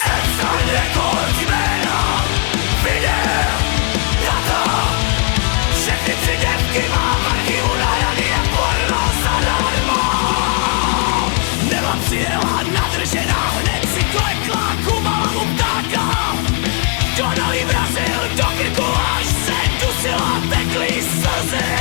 Epstein rekord jména, videa, data. Všechny tři děvky mám v archivu nahraný jak porno zadarmo. Nela přijela nadržená, hned si klekla, kumala mu ptáka. Donal jí vrazil do krku, až se dusila, tekly slzy.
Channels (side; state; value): right; quieter; 34.7 dB